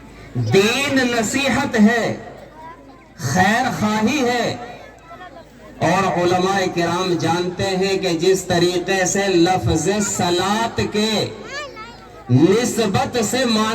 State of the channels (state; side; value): identical; both; correlation 1.00